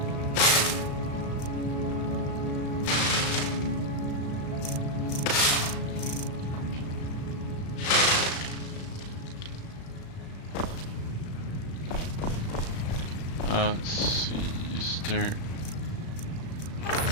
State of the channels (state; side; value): late; right; 36 ms